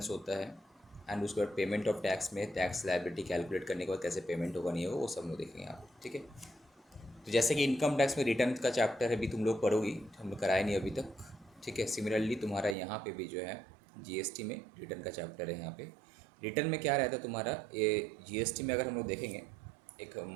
होता है एंड उसके बाद पेमेंट ऑफ टैक्स में टैक्स लायबिलिटी कैलकुलेट करने के बाद कैसे पेमेंट होगा नहीं होगा वो सब लोग देखेंगे आप। ठीक है। तो जैसे कि इनकम टैक्स में रिटर्न का चैप्टर है, अभी तुम लोग पढ़ोगी, हम लोग कराए नहीं अभी तक। ठीक है। सिमिलरली तुम्हारा यहाँ पे भी जो है जीएसटी में रिटर्न का चैप्टर है। यहाँ पे रिटर्न में क्या रहता है तुम्हारा, ये जीएसटी में अगर हम लोग देखेंगे एक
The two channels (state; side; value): drops out; left; at 12.8 s